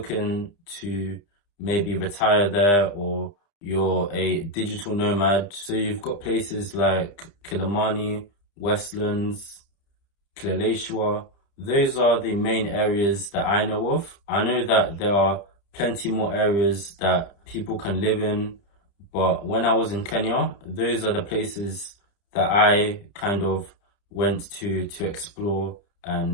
to maybe retire there, or you're a digital nomad. So you've got places like Kilimani, Westlands, Kileleshwa. Those are the main areas that I know of. I know that there are plenty more areas that people can live in, but when I was in Kenya, those are the places that I kind of went to explore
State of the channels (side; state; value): right; late; 30 ms